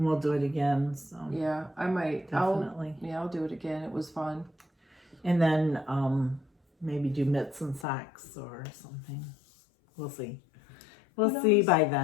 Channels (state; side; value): drops out; right; at 7.9 s